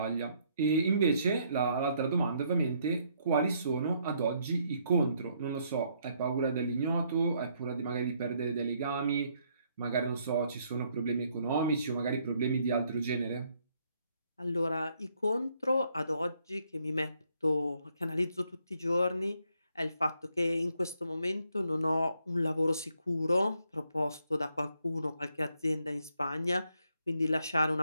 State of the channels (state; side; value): inverted; both; correlation -0.71